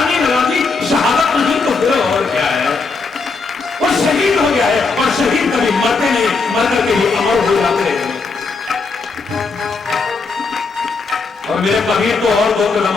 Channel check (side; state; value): right; quieter; 4.3 dB